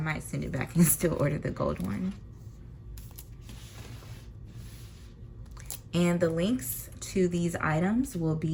send it back and still order the gold one. And the links to these items will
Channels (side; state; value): both; identical; correlation 1.00